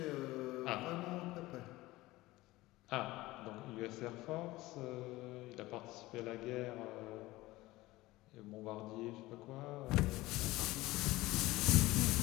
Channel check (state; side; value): quieter; right; 18.9 dB